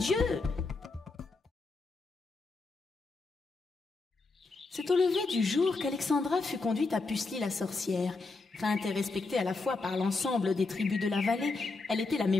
C'est au lever du jour qu'Alexandra fut conduite à Pucelie la sorcière. Feinte et respectée à la fois par l'ensemble des tribus de la vallée, elle était la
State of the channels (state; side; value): quieter; right; 3.7 dB